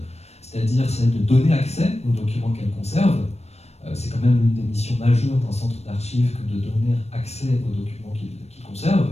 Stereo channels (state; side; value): late; right; 0.31 ms